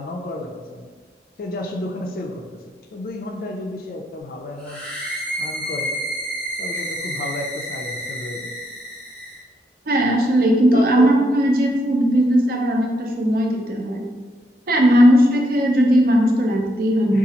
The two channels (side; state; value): both; normal; correlation 0.77